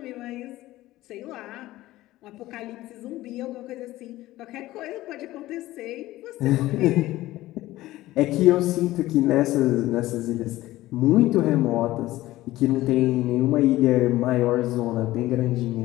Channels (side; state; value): right; quieter; 16.6 dB